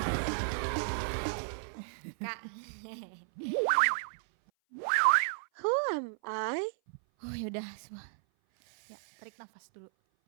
Kak. Who am I? Oh yaudah semua. Ya, tarik nafas dulu.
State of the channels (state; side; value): silent; left; 55 dB below the other